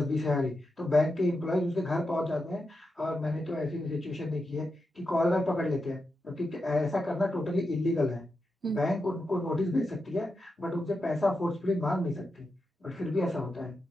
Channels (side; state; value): both; normal; correlation 0.87